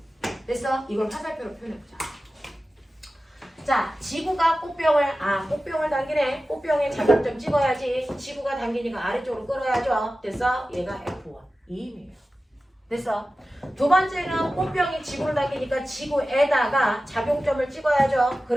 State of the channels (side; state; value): both; normal; correlation 0.95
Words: 그래서 이걸 화살표로 표현해보자. 자, 지구가 꽃병을 당기네. 꽃병에 자격점 찍어야지. 지구가 당기니까 아래쪽으로 끌어야죠. 됐어? 얘가 F1. 이 힘이에요. 됐어? 두 번째는 꽃병이 지구를 당기니까 지구에다가 작용점을 찍어야죠.